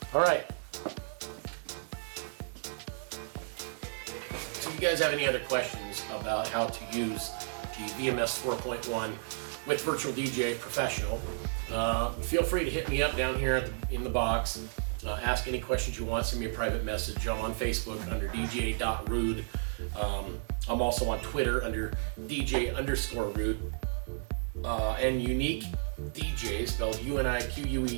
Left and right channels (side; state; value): left; silent; digital silence